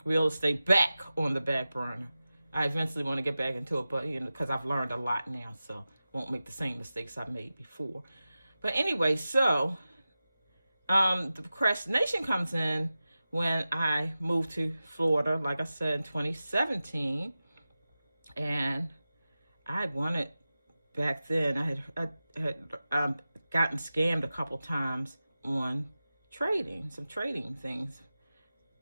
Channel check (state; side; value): inverted; both; correlation -0.94